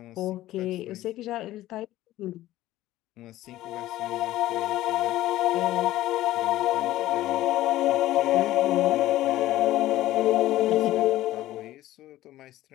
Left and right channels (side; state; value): right; quieter; 15.3 dB